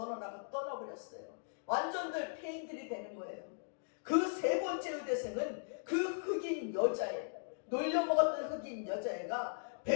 떠나버렸어요. 완전들 폐인들이 되는 거예요. 그 세 번째 의대생은 그 흑인 여자애, 놀려먹었던 흑인 여자애가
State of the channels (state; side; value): silent; right; digital silence